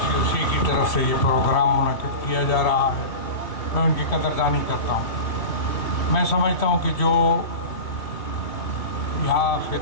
کی طرف سے یہ پروگرام منعقد کیا جا رہا ہے، میں ان کی قدردانی کرتا ہوں۔ میں سمجھتا ہوں کہ جو یہاں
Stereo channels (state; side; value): late; right; 2.8 ms